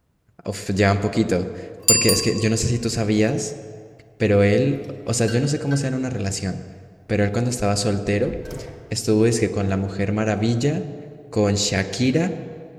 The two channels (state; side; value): identical; both; correlation 1.00